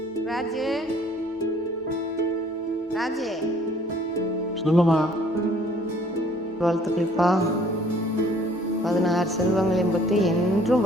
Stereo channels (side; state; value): both; normal; correlation 0.58